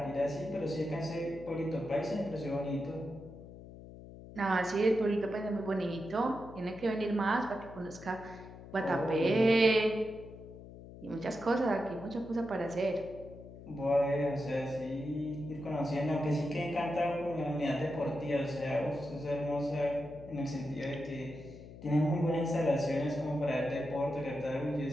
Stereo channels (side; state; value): left; noise; hum, 15 dB below the sound